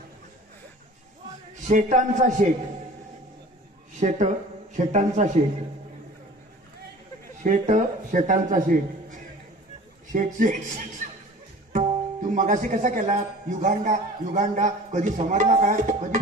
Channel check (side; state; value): both; normal; correlation 0.43